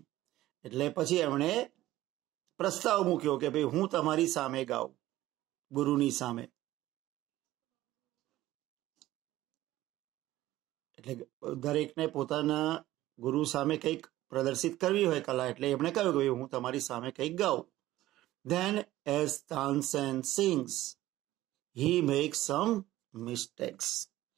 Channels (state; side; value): quieter; left; 15.6 dB